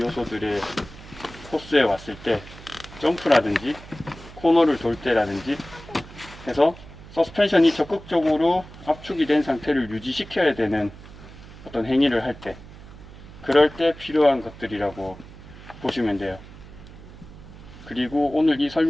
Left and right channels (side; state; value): right; noise; hum, 17 dB below the sound